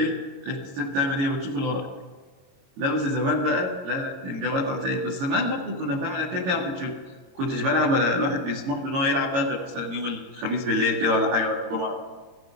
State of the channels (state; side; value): late; left; 22 ms